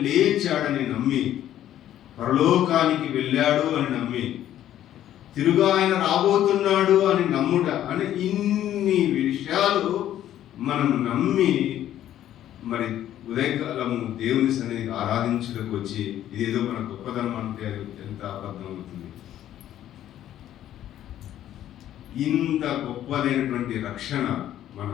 లేచాడని నమ్మి పరలోకానికి వెళ్ళాడు అని నమ్మి తిరుగా ఆయన రాబోతున్నాడు అని నమ్ముట అని ఇన్ని విషయాలు మనం నమ్మి మరి ఉదయకాలము దేవుని సన్నిధికి ఆరాధించడానికి వచ్చి ఇదేదో మన గొప్పతనం అంటే అది ఎంత అబద్ధం అవుతుంది. ఇంత గొప్పదైనటువంటి రక్షణ మన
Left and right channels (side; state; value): right; quieter; 11.9 dB